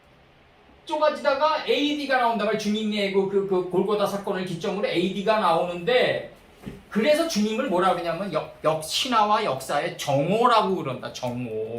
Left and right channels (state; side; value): identical; both; correlation 1.00